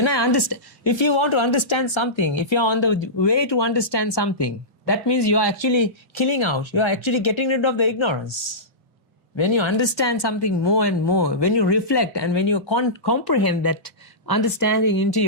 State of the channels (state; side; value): normal; both; correlation -0.18